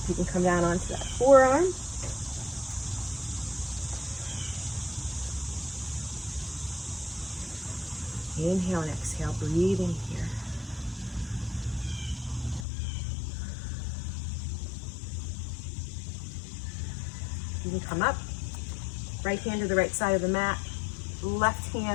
You can come down onto that forearm. Inhale and exhale, breathing here. You can come up, right hand to the right side of the mat, left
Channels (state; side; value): drops out; right; at 12.7 s